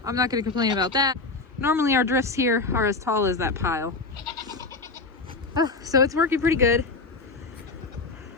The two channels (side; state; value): right; quieter; 3.8 dB